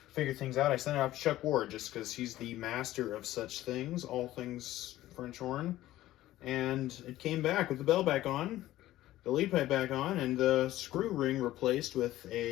figure things out, I sent it out to Chuck Ward just because he's the master of such things, all things French horn, and it came back with the bell back on, the lead pipe back on, and the screw ring replaced with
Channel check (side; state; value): right; quieter; 15.1 dB